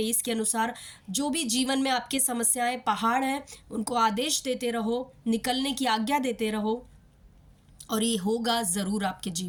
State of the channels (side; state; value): both; identical; correlation 1.00